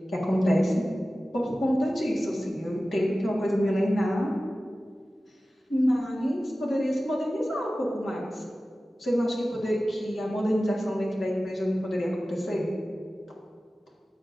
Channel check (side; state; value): both; normal; correlation 0.96